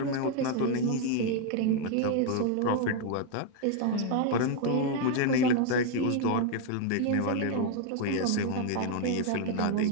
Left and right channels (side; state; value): both; different; correlation 0.00